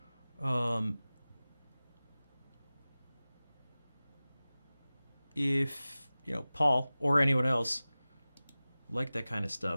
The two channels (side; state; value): both; inverted; correlation -0.97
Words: If, you know, Paul or anyone else like that kind of